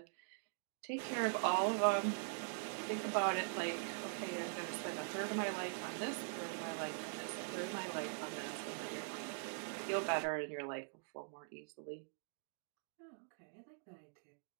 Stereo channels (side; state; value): left; silent; digital silence